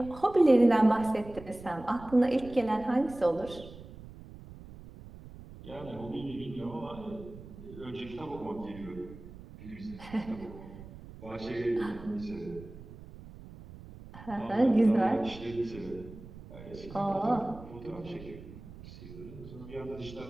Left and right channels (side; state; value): right; noise; rumble, 16 dB below the sound